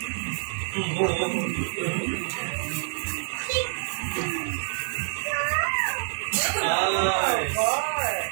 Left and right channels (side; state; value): left; silent; 57 dB below the other